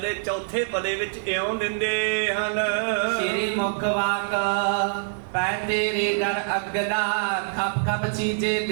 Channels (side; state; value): left; silent; 62 dB below the other